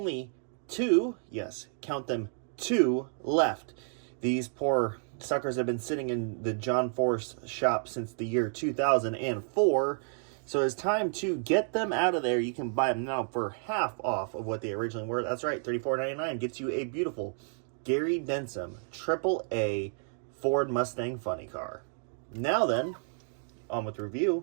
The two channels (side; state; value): left; silent; 57 dB below the other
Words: two, yes, count them, two left. These poor suckers have been sitting in the John Force shop since the year 2004, so it's time to get them out of there. You can buy them now for half off of what they originally were. That's right, $34.99 gets you a beautiful Gary Denson AAA Ford Mustang funny car. Now then, on with the